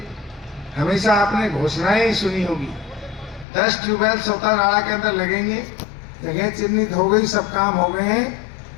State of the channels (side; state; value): right; drops out; at 3.5 s